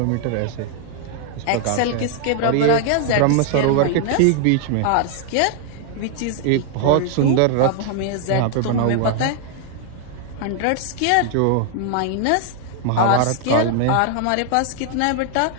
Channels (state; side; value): different; both; correlation 0.00